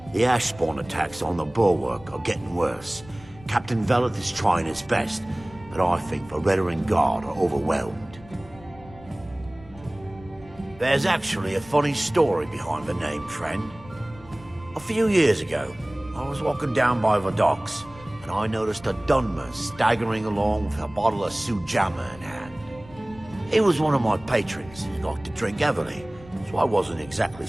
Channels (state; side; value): noise; left; rumble, 21 dB below the sound